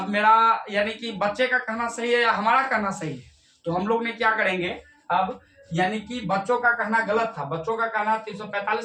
मेरा यानी कि बच्चे का कहना सही है या हमारा कहना सही है। तो हम लोग ने क्या करेंगे अब, यानी कि बच्चों का कहना गलत था, बच्चों का कहना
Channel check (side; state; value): both; identical; correlation 1.00